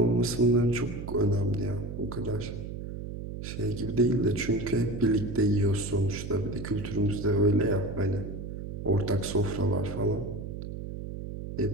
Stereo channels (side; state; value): right; noise; hum, 8 dB below the sound